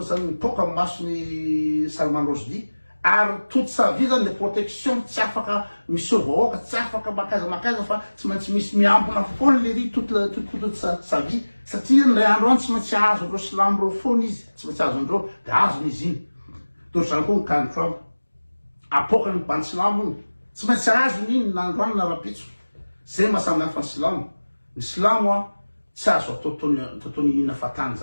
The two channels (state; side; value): inverted; both; correlation -1.00